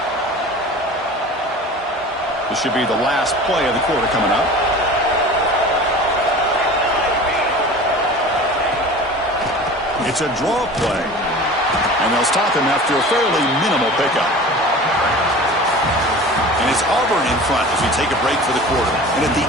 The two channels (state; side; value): normal; both; correlation 0.38